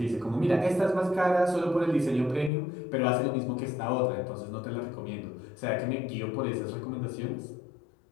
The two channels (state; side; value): drops out; right; at 2.5 s